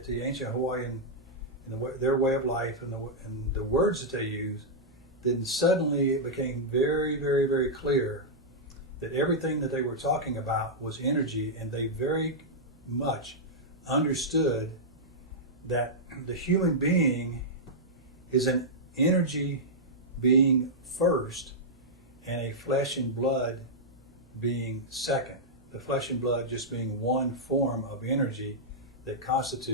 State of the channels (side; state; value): both; normal; correlation -0.08